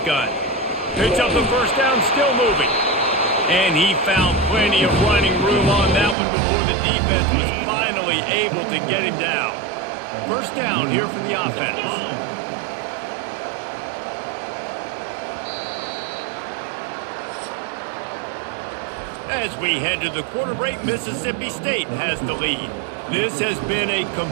Picks up the first down, still moving. And he found plenty of running room on that one before the defense was finally able to get him down. First down here for the offense. As we head to the quarter break, Mississippi State has the lead. This has been a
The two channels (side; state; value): left; drops out; at 6.2 s